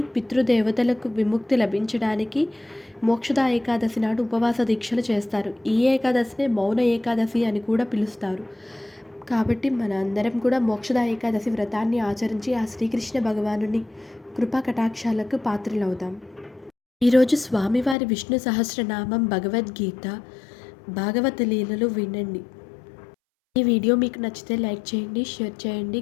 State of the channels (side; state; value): right; drops out; at 17.9 s